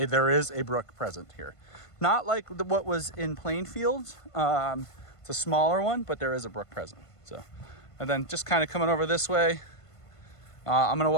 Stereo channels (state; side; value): late; right; 1.5 ms